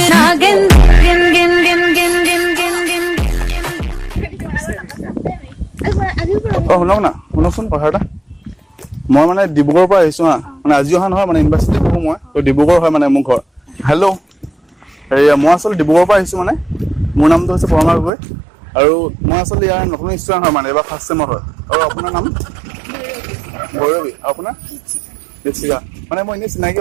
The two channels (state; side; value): drops out; left; at 18.1 s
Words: नागिन गिन गिन गिन गिन गिन गिन गिन শুনক না শুনকচোন কথা এটা মই মানে ডিব্ৰুগড়ৰ পৰা আহিছো হা মানে আজি অহা নহয় মানে ইউনিভাৰ্চিটি পঢ়ো মই তো ডিব্ৰুগড় হয় মানে মোৰ ঘৰ হেল্ল' মই আচলতে ডিব্ৰুগড়ৰ পৰা আহিছো মানে মোৰ নামটো হৈছে পৰমাৰ গগৈ আৰু মই আচলতে ইয়াৰ নতুন ষ্টুডেণ্ট হয় মানে এবাৰ ফাৰ্ষ্ট ছেমৰ হয় আৰু আপোনাৰ নাম ভৈৰৱী আপোনাৰ দীপশিখা মানে মই এনেই চিনাকি